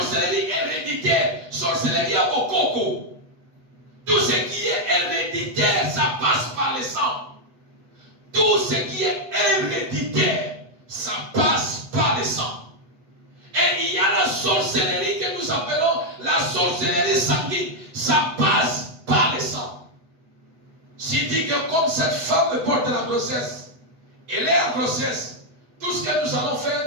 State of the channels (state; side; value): late; left; 8.1 ms